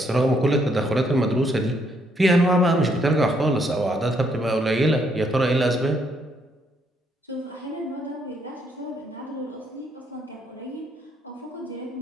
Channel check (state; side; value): normal; both; correlation 0.72